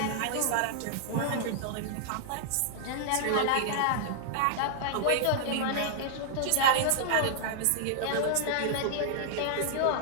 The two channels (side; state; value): both; different; correlation -0.01